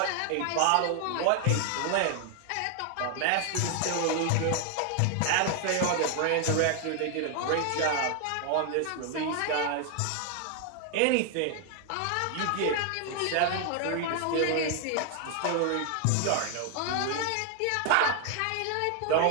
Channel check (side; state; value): both; different; correlation 0.00